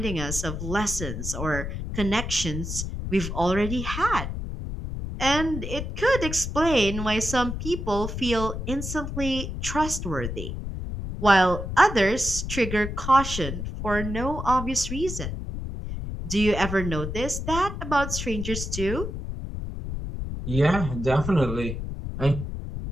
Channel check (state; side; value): noise; left; rumble, 6 dB below the sound